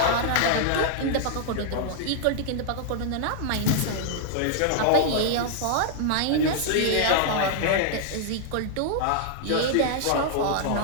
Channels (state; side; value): different; both; correlation -0.01